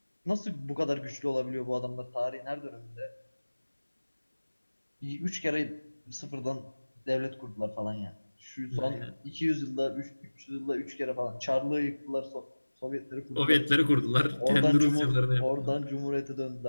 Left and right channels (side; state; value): both; inverted; correlation -1.00